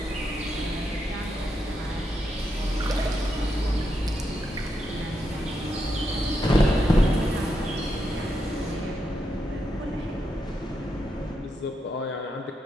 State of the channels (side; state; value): both; normal; correlation 0.83